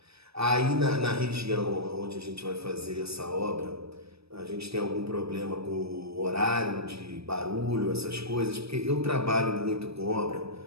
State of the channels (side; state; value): left; late; 0.78 ms